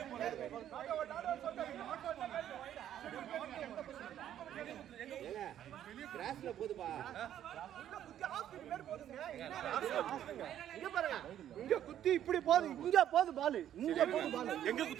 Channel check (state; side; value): quieter; left; 11.0 dB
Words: போனது கிராஸ்ல போதுப்பா இங்க பாருங்க இங்க குத்தி இப்படி போகுது இங்க போகுது பால் இங்க போகுது பால் எங்க